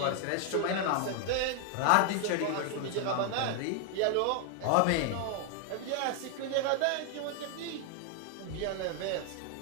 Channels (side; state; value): both; different; correlation 0.00